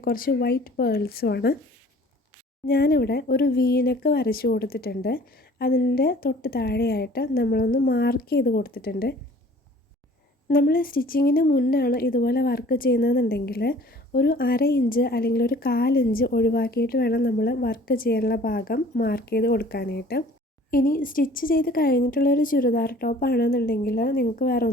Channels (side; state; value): both; normal; correlation 0.51